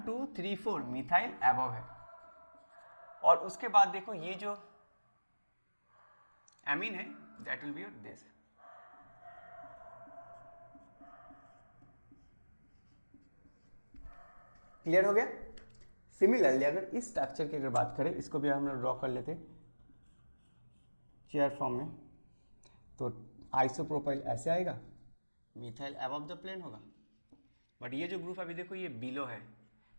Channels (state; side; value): inverted; both; correlation -1.00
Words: 2 3 4 मिथाइल एबव है। और उसके बाद देखो ये जो एमीन है that will be your this. Clear हो गया। सिमिलरली अगर इस स्ट्रक्चर की अगर बात करें, इसको भी हम लोग ड्रॉ कर लेते चेयर फॉर्म में, तो आइसोप्रोपाइल ऐसे आएगा, मिथाइल अबव द प्लेन होगा। बट ये जो ग्रुप अभी देखो ये बिलो है,